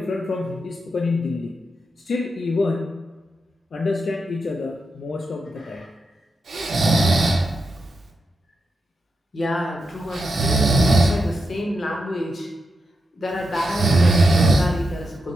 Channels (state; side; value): normal; both; correlation 0.86